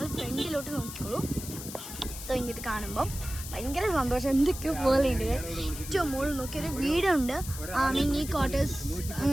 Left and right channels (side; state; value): left; noise; hiss, 10 dB below the sound